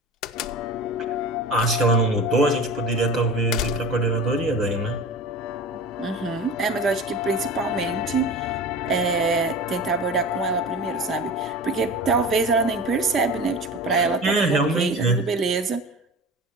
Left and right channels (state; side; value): normal; both; correlation 0.34